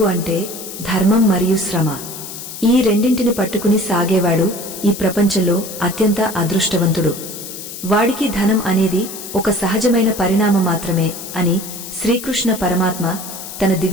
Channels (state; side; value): noise; left; hiss, 11 dB below the sound